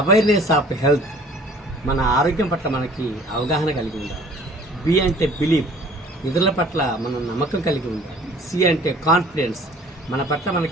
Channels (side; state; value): both; normal; correlation 0.52